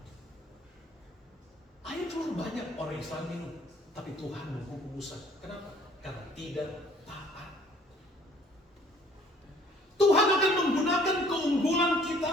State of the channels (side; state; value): both; normal; correlation 0.57